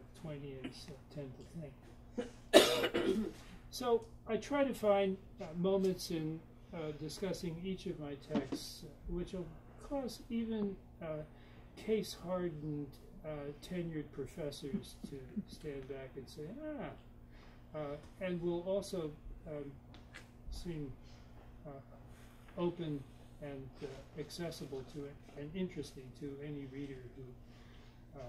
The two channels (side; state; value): both; identical; correlation 1.00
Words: Twainians tend to think. So I try to find moments in discussing each of my texts which will cause even case-hardened tenured professors to stand back and say, and will also seem open and accessible to it and interesting to any reader who